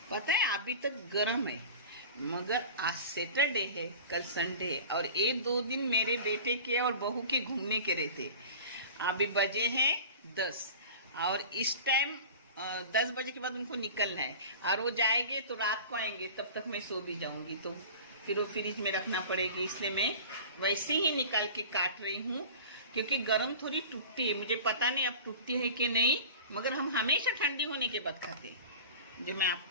पता है अभी तक गर्म है, मगर आज सैटरडे है, कल संडे है, और 1-2 दिन मेरे बेटे के और बहू के घूमने के रहते। अभी बजे हैं 10, और इस टाइम 10 बजे के बाद उनको निकलना है, और वो जाएंगे तो रात को आएंगे, तब तक मैं सो भी जाऊंगी, तो फिर वो फ्रिज में रखना पड़ेगी। इसलिए मैं वैसे ही निकाल के काट रही हूँ, क्योंकि गरम थोड़ी टूटती है। मुझे पता नहीं अब टूटती है कि नहीं, मगर हम हमेशा ठंडी होने के बाद खाते हैं, जो मैं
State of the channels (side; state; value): both; inverted; correlation -0.38